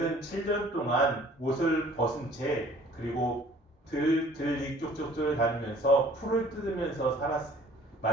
7년 동안 옷을 벗은 채 그리고 들이 쪽쪽을 다니면서 풀을 뜯으면서 살았어요.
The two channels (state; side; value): normal; both; correlation 0.53